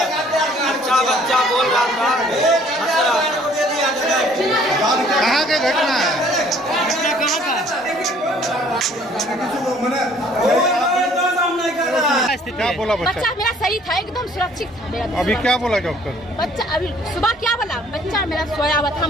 अच्छा बच्चा बोल रहा था, हंस रहा था। कहाँ के घटना है? घटना कहाँ का? क्या बोला बच्चा? बच्चा मेरा सही था, एकदम सुरक्षित था मेरा। अभी क्या बोला डॉक्टर? बच्चा अभी सुबह क्या बोला? बच्चा मेरा सोया हुआ था,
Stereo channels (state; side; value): normal; both; correlation 0.58